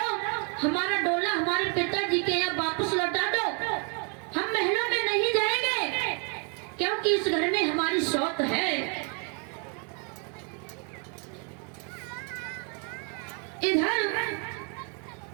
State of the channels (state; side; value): quieter; left; 38.3 dB